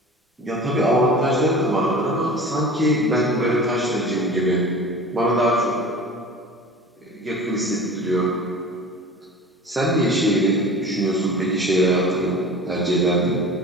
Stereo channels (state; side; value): normal; both; correlation 0.38